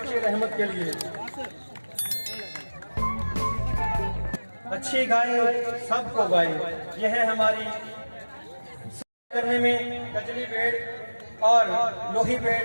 रहमत के लिए। अच्छी गाय सबको गाय, यह है हमारी करने में कजली बेड़ और लोही बेड़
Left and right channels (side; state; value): both; inverted; correlation -1.00